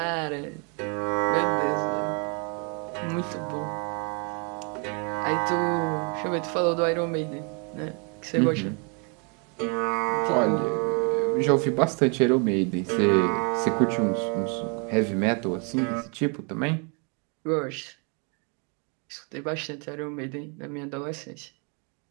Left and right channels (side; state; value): left; quieter; 35.9 dB